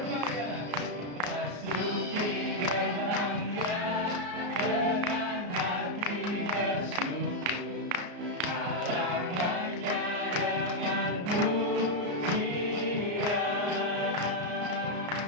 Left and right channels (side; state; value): left; late; 34 ms